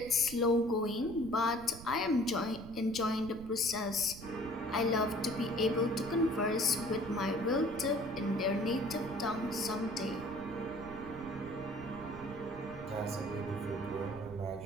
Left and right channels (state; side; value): noise; right; rumble, 14 dB below the sound